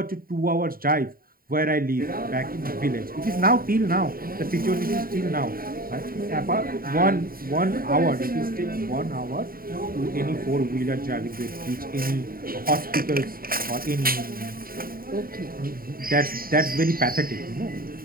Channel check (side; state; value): left; late; 0.43 ms